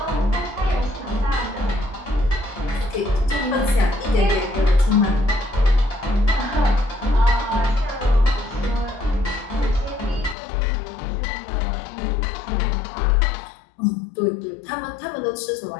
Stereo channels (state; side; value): drops out; right; at 10.4 s